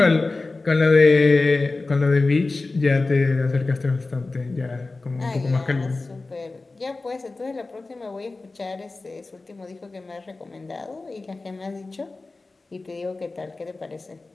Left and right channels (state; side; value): quieter; right; 3.5 dB